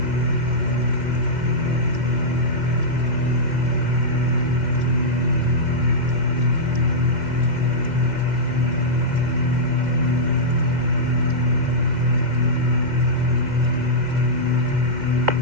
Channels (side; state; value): left; late; 2.1 ms